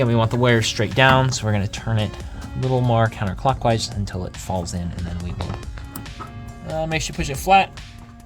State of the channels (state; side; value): identical; both; correlation 1.00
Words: we want the wires straight down, so we're gonna turn it a little more counterclockwise until it falls in, and then we will make sure you push it flat